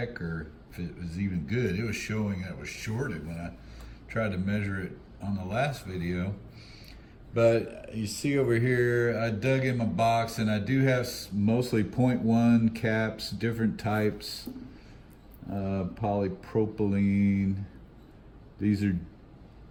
or if it was even good. It was showing that it was shorted when I tried to measure it on the last video. But you see over here, I dug in my box, and I do have mostly 0.1 caps, different types, polypropylene. These are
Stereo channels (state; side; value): identical; both; correlation 1.00